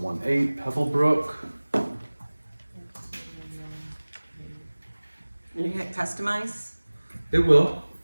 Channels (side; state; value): both; inverted; correlation -1.00